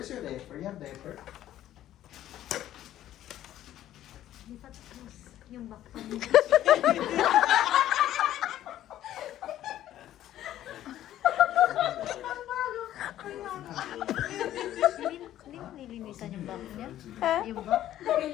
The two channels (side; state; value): right; quieter; 12.6 dB